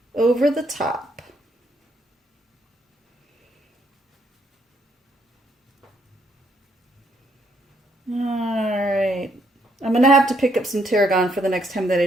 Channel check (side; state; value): both; normal; correlation 0.72